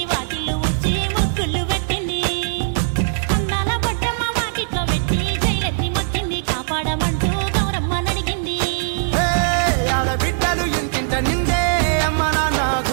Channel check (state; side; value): silent; left; digital silence